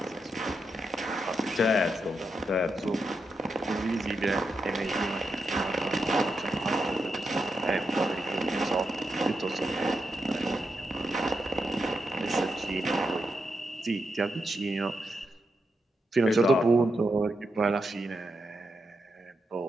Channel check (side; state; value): both; normal; correlation 0.85